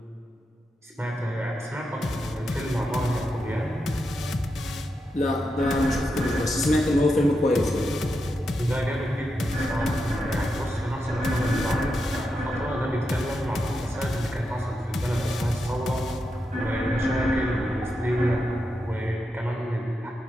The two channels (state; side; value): normal; both; correlation 0.86